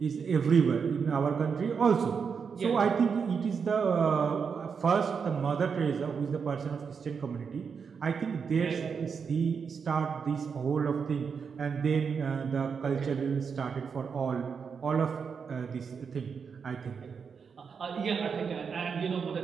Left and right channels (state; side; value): quieter; left; 6.1 dB